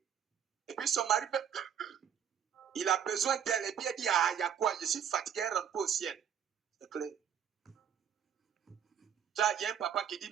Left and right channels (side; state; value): left; quieter; 8.6 dB